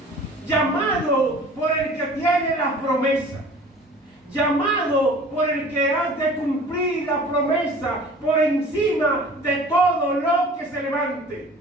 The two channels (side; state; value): both; normal; correlation 0.45